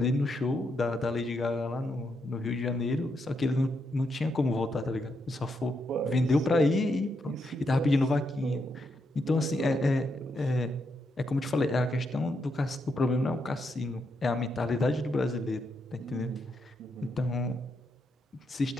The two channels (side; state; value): both; normal; correlation 0.81